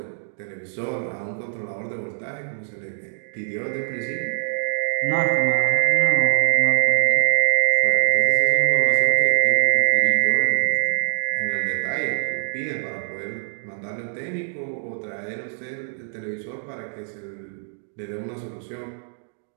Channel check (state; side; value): silent; left; digital silence